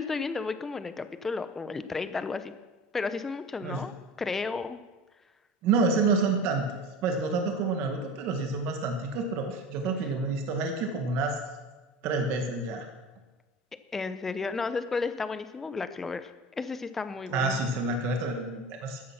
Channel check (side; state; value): both; normal; correlation 0.34